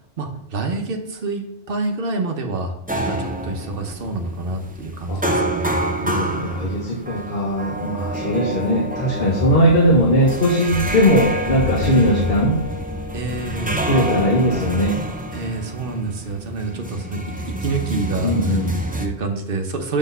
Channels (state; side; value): normal; both; correlation -0.17